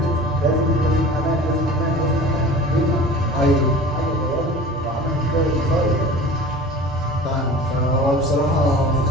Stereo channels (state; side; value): normal; both; correlation 0.39